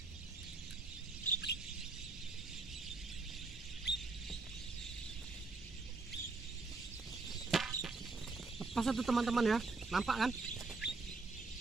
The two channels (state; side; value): quieter; left; 3.7 dB